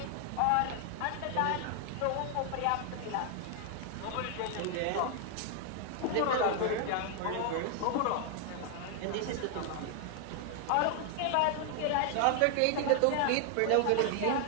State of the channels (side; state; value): both; different; correlation 0.00